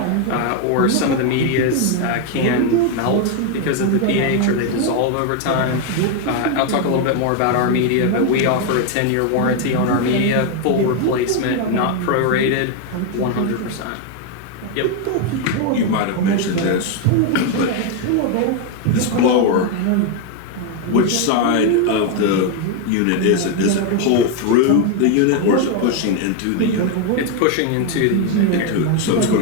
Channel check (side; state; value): both; different; correlation 0.01